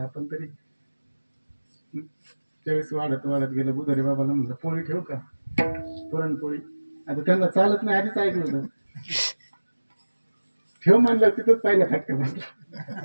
तरी. त्यावेळेस वाढत वाढत गेलं. बुधोरी बाबाला म्हणलं पोळी ठेवू का, पुरणपोळी. आता त्यांना चालत नाही आधीच ऐकलं होतं. ठेव म्हणलं तिथंच पहिला फटका बसला.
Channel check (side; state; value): both; inverted; correlation -1.00